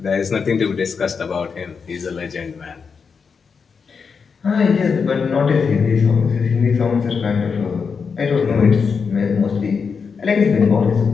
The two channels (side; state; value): right; quieter; 5.7 dB